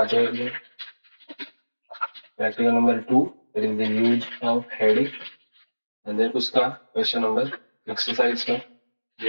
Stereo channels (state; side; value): inverted; both; correlation -1.00